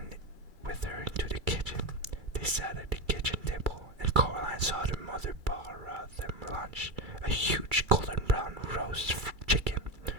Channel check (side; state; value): left; late; 2.3 ms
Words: with her into the kitchen. They sat at the kitchen table, and Coraline saw their mother pour out them lunch. A huge golden brown roast chicken,